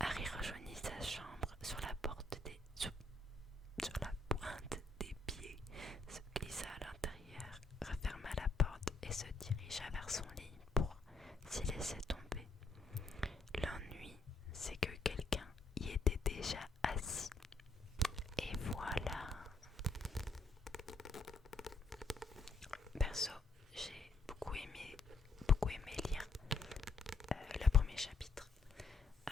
rejoignit sa chambre sur la pointe des pieds, se glissa à l'intérieur, referma la porte et se dirigea vers son lit pour s'y laisser tomber. L'ennui, c'est que quelqu'un y était déjà assis. Et voilà. Perso, j'ai beaucoup aimé lire le premier chapitre.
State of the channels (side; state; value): right; quieter; 3.2 dB